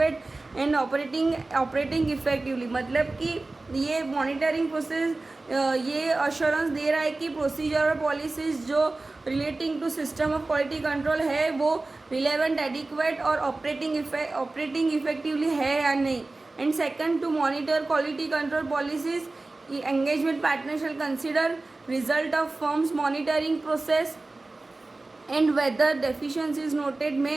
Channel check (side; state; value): left; quieter; 3.2 dB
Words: and operating effectively. मतलब कि ये monitoring process ये assurance दे रहा है कि procedure और policies जो relating to system of quality control है वो रिलेवेंट, एडिक्वेट और ऑपरेटिंग इफेक्टिवली है या नहीं. And second, to monitor quality control policies engagement partner shall consider result of firm's monitoring process and whether deficiencies noted may